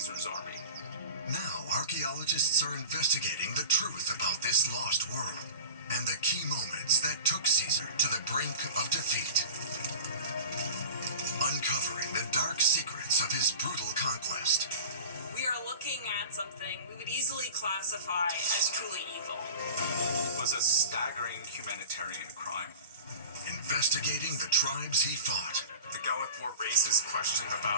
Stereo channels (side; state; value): both; inverted; correlation -0.37